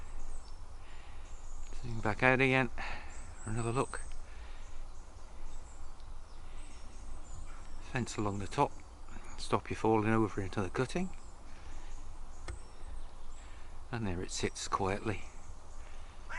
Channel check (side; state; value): both; identical; correlation 1.00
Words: Zoom back out again for another look. Fence along the top, stop you falling over into the cutting. And there it sits quietly.